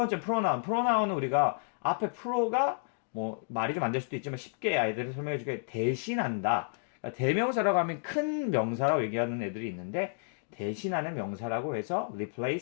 pronoun. pronoun은 우리가 앞에 pro가 뭐 말이 좀 안 될 수도 있지만 쉽게 아이들을 설명해 주게 대신한다. 그러니까 대명사라고 하면 큰 명사라고 얘기하는 애들이 있는데 대신하는 명사라고 해서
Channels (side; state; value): right; silent; digital silence